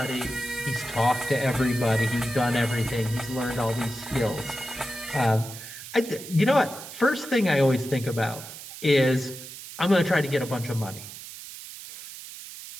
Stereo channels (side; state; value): right; noise; hiss, 13 dB below the sound